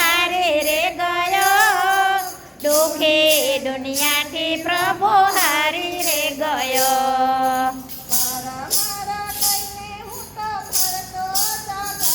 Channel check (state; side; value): identical; both; correlation 1.00